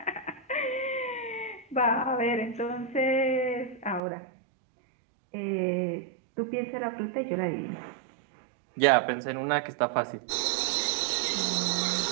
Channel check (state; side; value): drops out; left; at 4.0 s